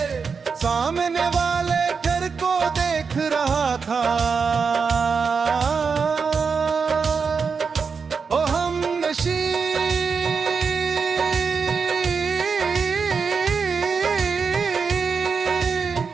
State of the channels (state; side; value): quieter; left; 5.5 dB